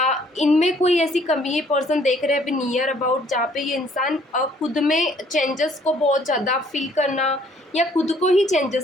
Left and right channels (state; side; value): normal; both; correlation 0.61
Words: इनमें कोई ऐसी कमी ये पर्सन देख रहे हैं अभी नियर अबाउट, जहाँ पे ये इंसान खुद में चेंजेस को बहुत ज़्यादा फील करना या खुद को ही